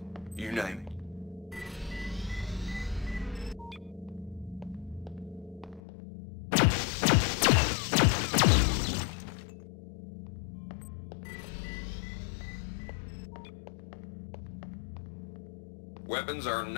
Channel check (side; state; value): right; drops out; at 5.8 s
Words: you name it. Weapons are